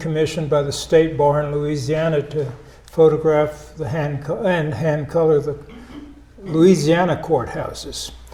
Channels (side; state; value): both; identical; correlation 1.00